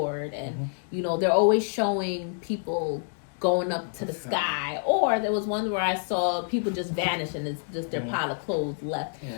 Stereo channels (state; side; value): silent; right; digital silence